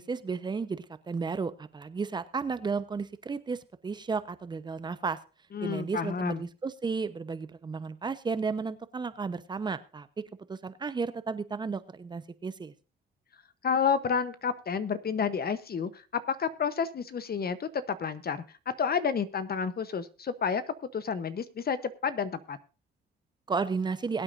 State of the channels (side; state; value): both; normal; correlation 0.29